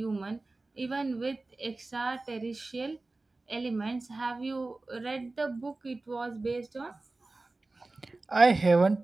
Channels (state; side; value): quieter; left; 3.2 dB